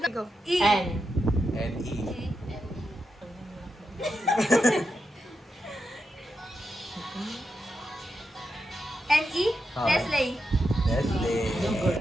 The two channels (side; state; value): both; normal; correlation 0.86